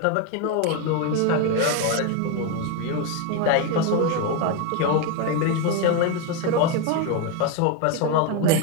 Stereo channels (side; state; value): both; different; correlation 0.02